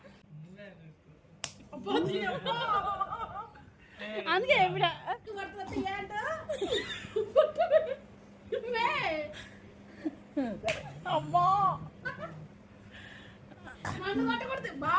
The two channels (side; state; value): both; identical; correlation 1.00